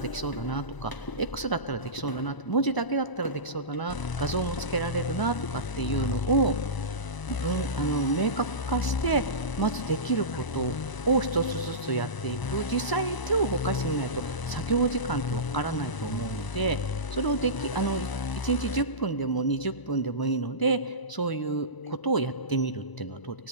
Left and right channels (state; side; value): late; right; 1.0 ms